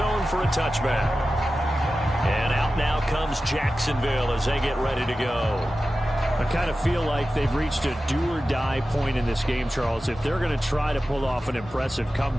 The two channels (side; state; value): both; normal; correlation 0.94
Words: for a touchback. And out now comes Jacksonville as they get ready to go. I kind of feel like they've reached a do-or-die point in this game, Charles. If they're going to try to pull off an impressive